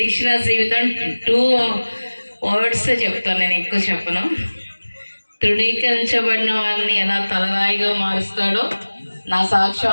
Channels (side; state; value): both; inverted; correlation -1.00